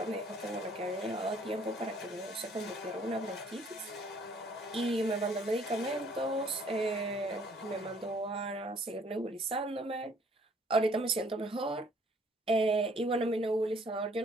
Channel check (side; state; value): both; normal; correlation 0.61